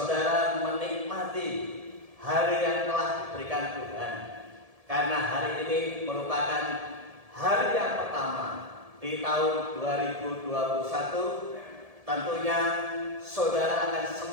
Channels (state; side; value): late; left; 1.7 ms